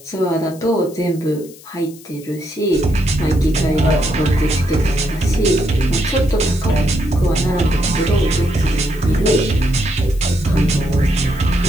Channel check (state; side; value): noise; left; hiss, 21 dB below the sound